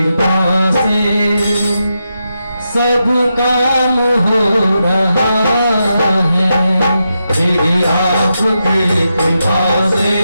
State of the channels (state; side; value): inverted; both; correlation -0.87